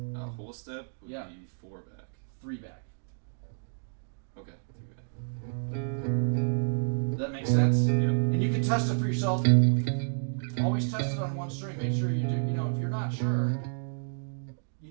A whole step would be 4 back. 3 back. Okay, 3 back. That makes sense? Yep. And you can test it for yourself. Always test it on one string. Make sure you do. You know, if you're not sure, you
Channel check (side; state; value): left; silent; digital silence